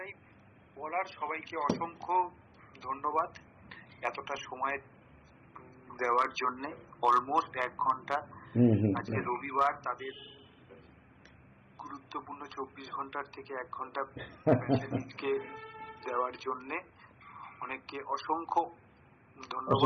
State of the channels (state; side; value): identical; both; correlation 1.00